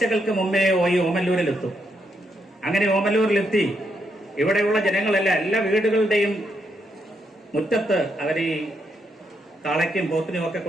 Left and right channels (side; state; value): both; normal; correlation 0.79